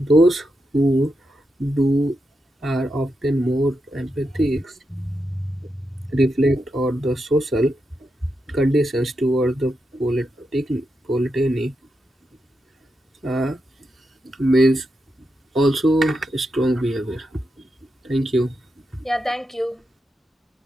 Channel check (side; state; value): both; normal; correlation 0.86